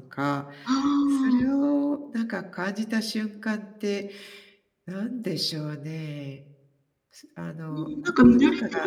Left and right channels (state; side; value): identical; both; correlation 1.00